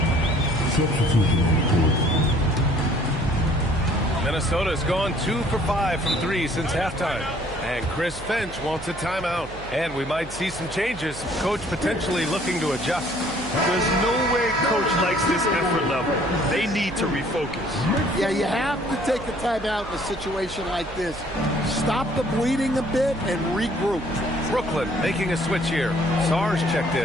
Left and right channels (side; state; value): right; noise; hum, 15 dB below the sound